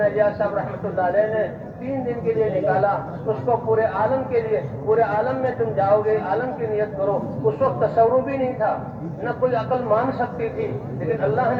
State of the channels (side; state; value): both; identical; correlation 1.00